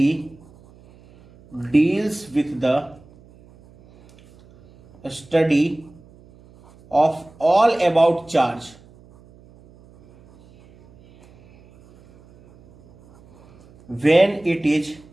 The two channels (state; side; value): noise; right; hum, 26 dB below the sound